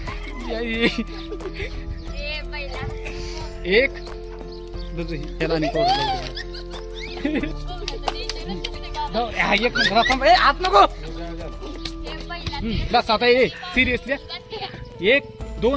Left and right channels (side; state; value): both; identical; correlation 1.00